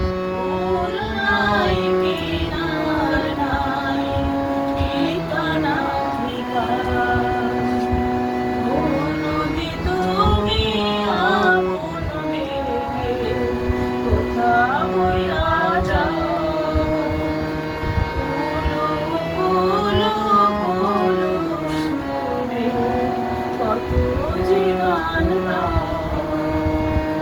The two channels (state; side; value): identical; both; correlation 1.00